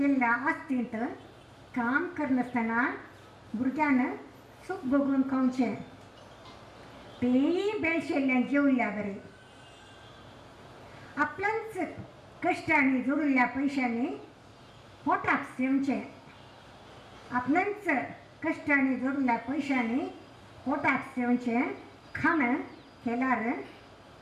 आस्तींत काम करनासतना भुरग्यान सुख बघून खावचें. तेंय बेलशेल्ल्यान जेवल्ल्या बरी. आपल्याच कश्टांनी जोडिल्ल्या पयशांनी पोटाक सेवचें. आपल्याच कश्टांनी जोडिल्ल्या पयशांनी पोटाक सेवचें. खाण केल्यार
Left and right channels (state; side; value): identical; both; correlation 1.00